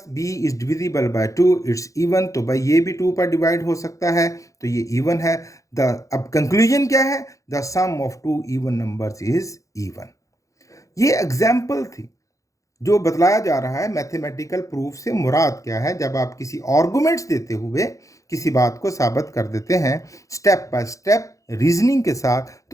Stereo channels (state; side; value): late; right; 0.16 ms